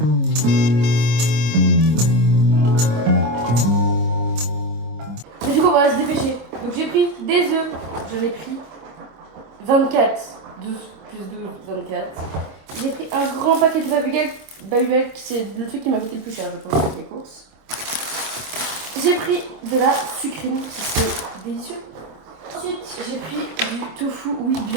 Mais du coup on va se dépêcher. Donc j'ai pris des œufs. J'en ai pris 24. 12 plus 12, 24. J'ai pris un grand paquet de Babybel, c'est le truc qui m'a coûté le plus cher, je pense, avec les courses. J'ai pris de la sucrine, qui c'est délicieux. Ensuite, j'ai pris du tofu, oui,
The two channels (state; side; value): late; left; 26 ms